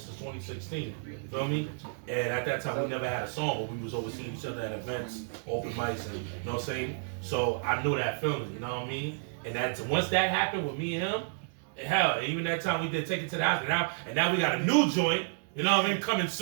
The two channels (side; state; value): left; silent; digital silence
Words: 2016. You feel me? And at that time we never had a song, but we was always seeing each other at events, open mics, and you know what I'm saying. So I knew that feeling, you know what I mean. And once that happened with me and him, Hell, even that time we did Take It to the House, and now we got a new joint. You know what I mean? Coming